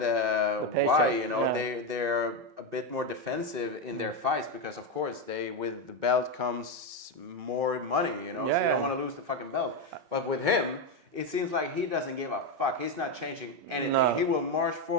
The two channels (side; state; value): left; late; 5.3 ms